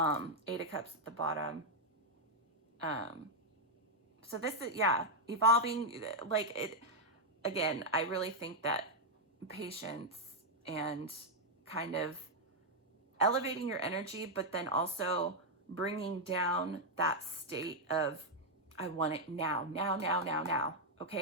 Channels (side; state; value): both; normal; correlation -0.01